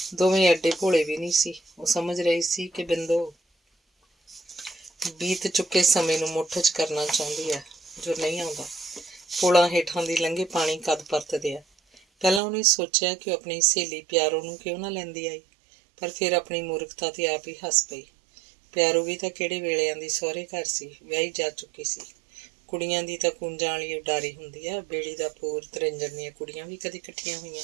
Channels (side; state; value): left; drops out; at 12.4 s